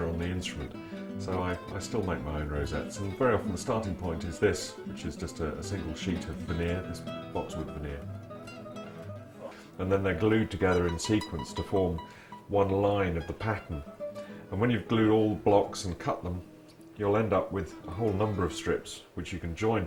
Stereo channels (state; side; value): identical; both; correlation 1.00